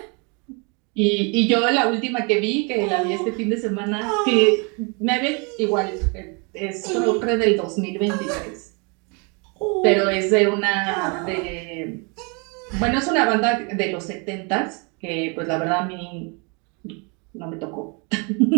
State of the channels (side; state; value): left; quieter; 33.1 dB